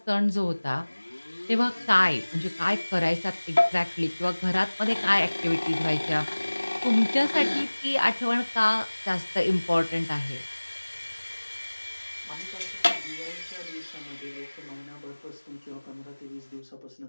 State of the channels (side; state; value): both; inverted; correlation -1.00